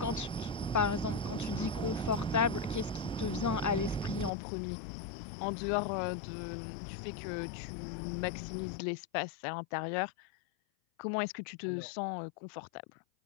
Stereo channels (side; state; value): right; drops out; at 4.3 s